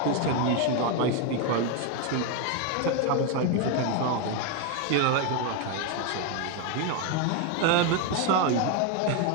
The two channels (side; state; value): both; different; correlation 0.01